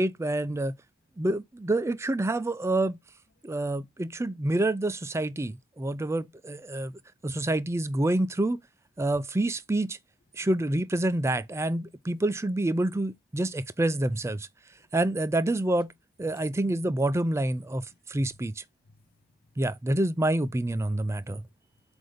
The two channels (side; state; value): both; normal; correlation 0.84